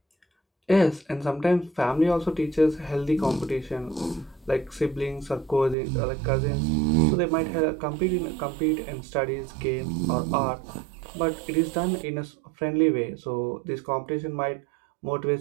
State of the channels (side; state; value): left; drops out; at 5.8 s